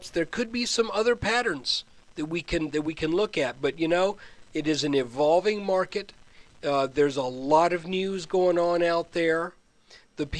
there could be some other patterns that we can look at. But you know, it is an evolving market. There's a lot of news going on out there. The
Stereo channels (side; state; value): both; identical; correlation 1.00